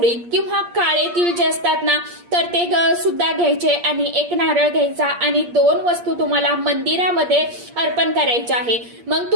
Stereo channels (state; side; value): late; left; 8.5 ms